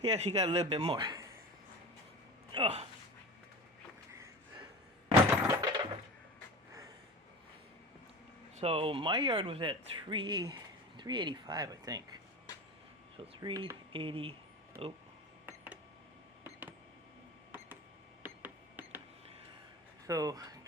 he actually got a little bit more. Oh. So my yard was at 385, I think. So 380. Oh. So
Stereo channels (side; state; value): both; normal; correlation 0.32